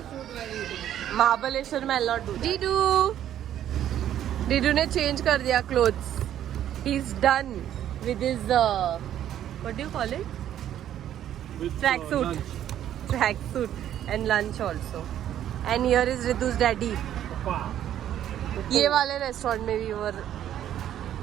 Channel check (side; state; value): left; quieter; 11.1 dB